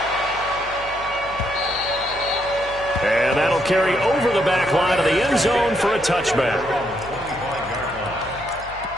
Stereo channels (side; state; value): left; noise; hum, 18 dB below the sound